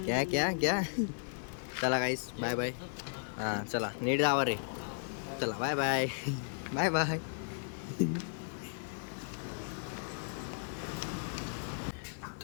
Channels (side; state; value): right; silent; digital silence